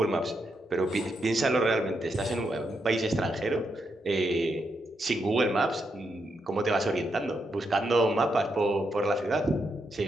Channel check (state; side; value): normal; both; correlation 0.82